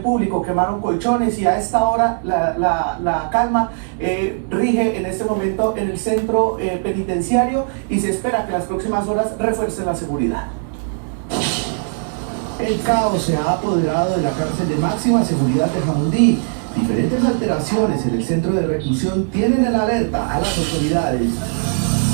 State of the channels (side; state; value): left; silent; 66 dB below the other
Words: público. Quemaron colchones y a esta hora la calma rige en este momento en el centro penitenciario y se espera que las próximas horas refuercen la seguridad. El caos se ha apoderado de la cárcel de máxima seguridad de Jamundí. Diferentes alteraciones en el centro de reclusión tienen en alerta a las autoridades.